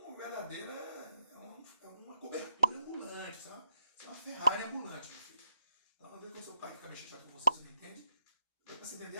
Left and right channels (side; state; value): both; inverted; correlation -0.85